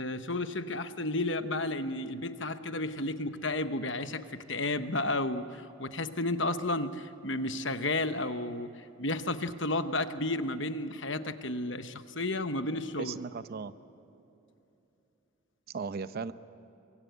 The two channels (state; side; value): normal; both; correlation 0.03